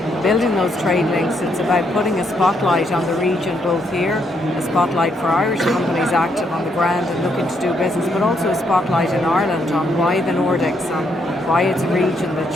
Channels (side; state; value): both; normal; correlation 0.75